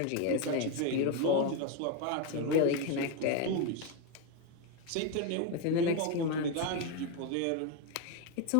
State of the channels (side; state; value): both; different; correlation 0.02